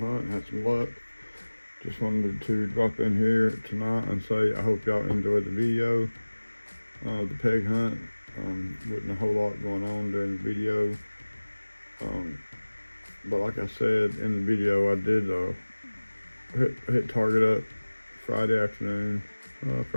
hunt and had some luck. Just wanted to drop in here tonight and say I hope y'all enjoyed the video. The peg hunt. Wasn't a whole lot going on during the video. But like I said in the video, I did hit Target up Friday afternoon.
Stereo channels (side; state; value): both; inverted; correlation -1.00